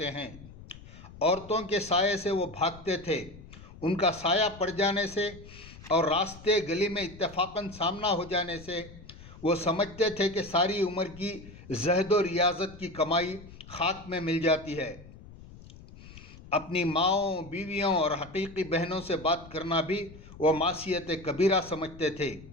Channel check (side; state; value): left; noise; rumble, 18 dB below the sound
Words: ہیں۔ عورتوں کے سائے سے وہ بھاگتے تھے، ان کا سایہ پڑ جانے سے اور راستے گلی میں اتفاقاً سامنا ہو جانے سے وہ سمجھتے تھے کہ ساری عمر کی زہد و ریاضت کی کمائی خاک میں مل جاتی ہے۔ اپنی ماؤں، بیویوں اور حقیقی بہنوں سے بات کرنا بھی وہ معصیت کبیرہ سمجھتے تھے،